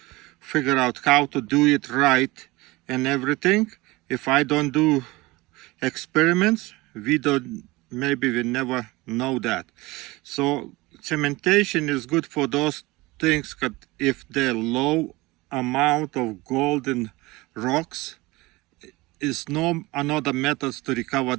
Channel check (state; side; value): quieter; left; 21.6 dB